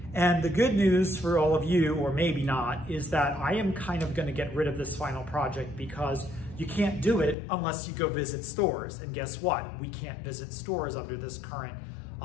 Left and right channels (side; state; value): right; drops out; at 7.4 s